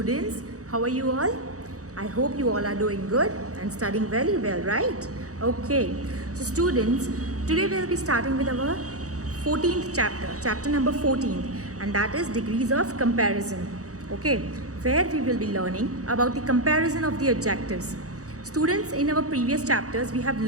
How are you all? I hope you all are doing good and studying very well, right? Okay. So, students, today we'll be starting with our 14th chapter number 14, and that is degrees of comparison. Okay, where we will be learning about the comparison of the adjectives. Students, in our previous chapters, we have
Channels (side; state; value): left; late; 0.66 ms